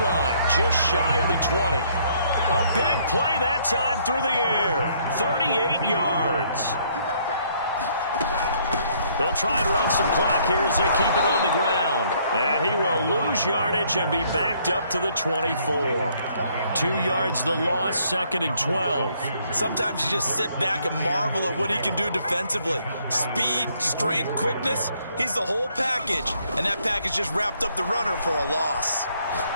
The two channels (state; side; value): inverted; both; correlation -0.66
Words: just shy of the 20. A big play that time through the air. 38 yards. They'll try and run some clock here as they keep it on the ground. And he will lose yardage and be backed up to the 24. 2 yards the loss, 2nd and 12. Sometimes you just sit back and marvel at what he can do defensively. Speed, strength, quickness, he's the whole package. And that package just wrapped up the runner for a loss.